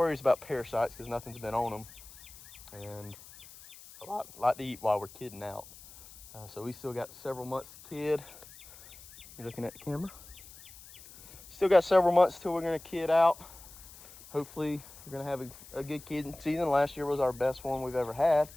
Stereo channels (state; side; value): noise; left; hiss, 19 dB below the sound